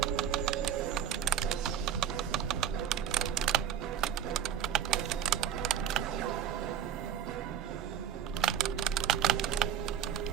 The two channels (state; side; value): quieter; left; 9.3 dB